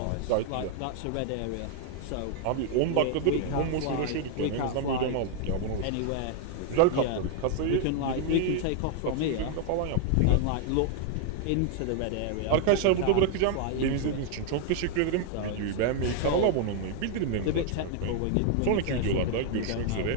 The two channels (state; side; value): different; both; correlation 0.00